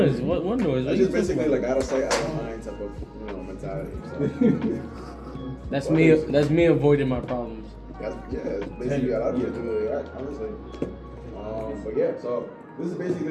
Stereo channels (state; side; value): identical; both; correlation 1.00